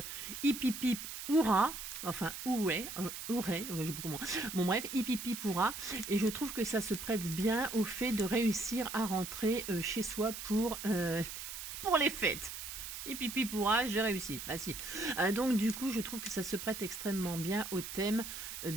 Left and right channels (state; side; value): noise; right; hiss, 8 dB below the sound